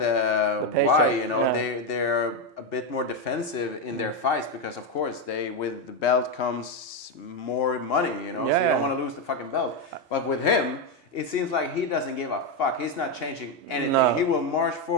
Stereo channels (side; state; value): both; normal; correlation 0.07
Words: why, you know, they're a bit more defensive in their fights, because of course with the belt comes more money, you know, so you don't want to lose the fucking belt. But with him, it seems like he doesn't give a fuck. He's not changing anything. No. He will march